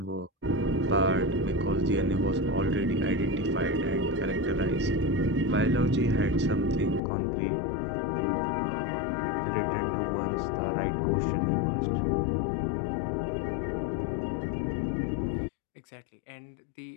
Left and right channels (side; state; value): right; drops out; at 7.0 s